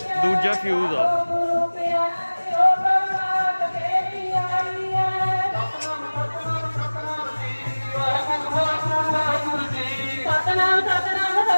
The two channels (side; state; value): both; inverted; correlation -1.00